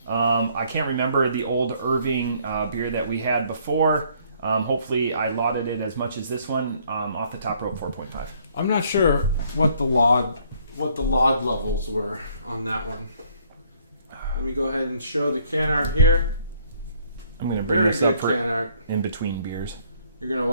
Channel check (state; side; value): inverted; both; correlation -0.63